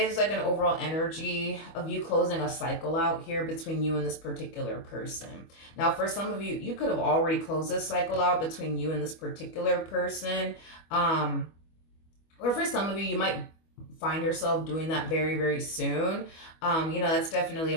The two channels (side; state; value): right; late; 25 ms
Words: like an overall energy of you closing a cycle out here between you and this particular person. Now, for some of you, you could have already closed this cycle out between you and this particular person. Or for some of you, you might find yourself doing that very, very soon. That's definitely a